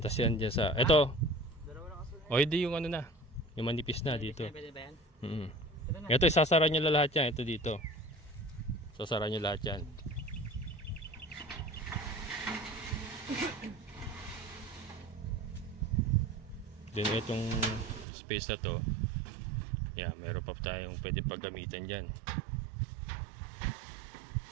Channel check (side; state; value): left; drops out; at 18.1 s